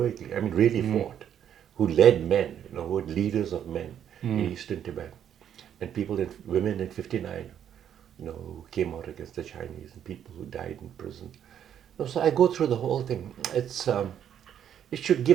really fought, who led men, who were leaders of men in eastern Tibet. And women in '59, who came out against the Chinese, and people who died in prison. So I go through the whole thing. It should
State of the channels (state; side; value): quieter; left; 9.5 dB